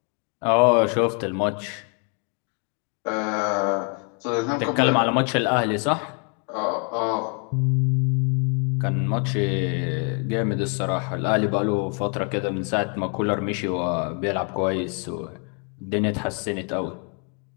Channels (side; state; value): right; quieter; 39.6 dB